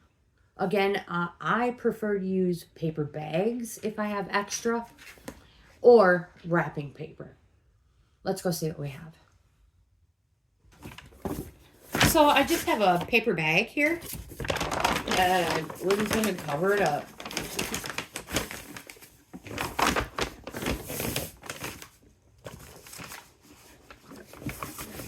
Again, I prefer to use paper bags if I have extra, or wrapping paper. Let's go see what we have. So I just have a paper bag here. And we're just going to cover it up.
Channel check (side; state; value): both; identical; correlation 1.00